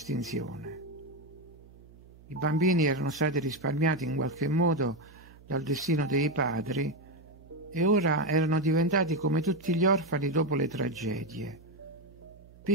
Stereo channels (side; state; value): right; noise; hum, 23 dB below the sound